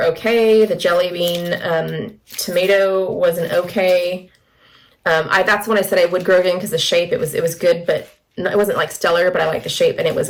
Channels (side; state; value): both; identical; correlation 1.00